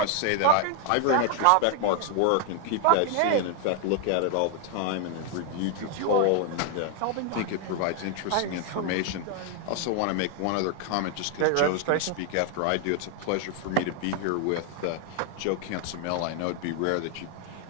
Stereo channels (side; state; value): both; different; correlation 0.00